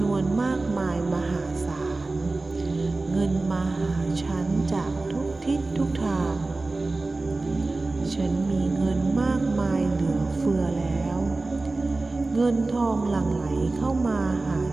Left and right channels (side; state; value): left; quieter; 3.3 dB